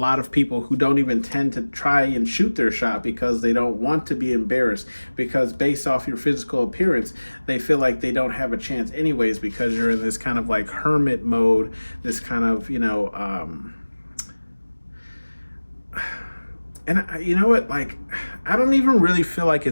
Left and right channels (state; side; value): inverted; both; correlation -1.00